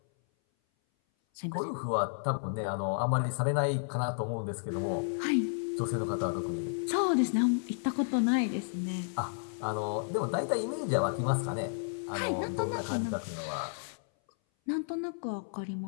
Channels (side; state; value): right; silent; 56 dB below the other